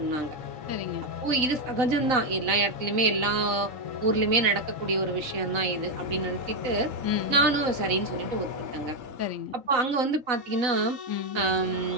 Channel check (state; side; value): late; left; 4.0 ms